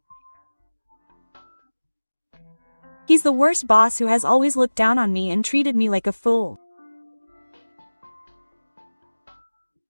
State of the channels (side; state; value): both; inverted; correlation -1.00